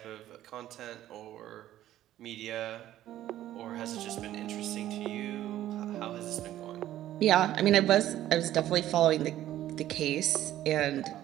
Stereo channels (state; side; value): quieter; left; 13.2 dB